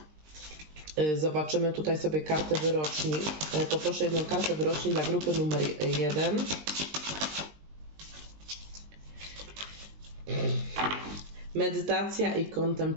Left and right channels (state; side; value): late; left; 20 ms